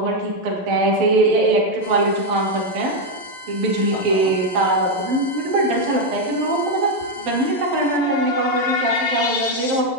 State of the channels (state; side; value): late; left; 11 ms